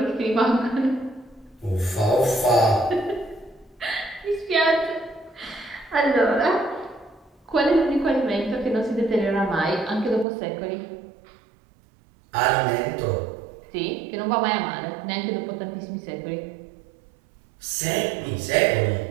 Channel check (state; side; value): drops out; left; at 10.2 s